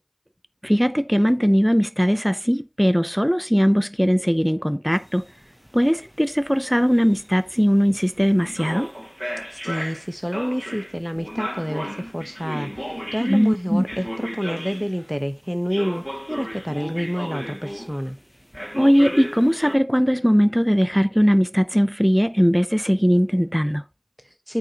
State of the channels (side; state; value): both; identical; correlation 1.00